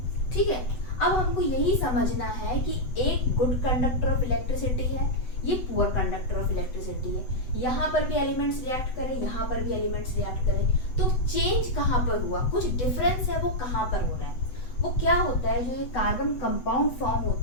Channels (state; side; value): late; right; 8.0 ms